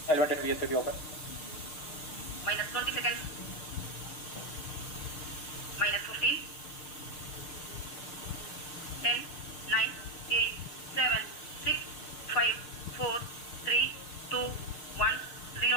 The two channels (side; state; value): right; late; 6.6 ms